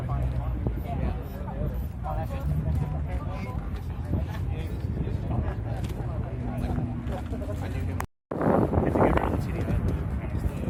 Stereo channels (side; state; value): both; identical; correlation 1.00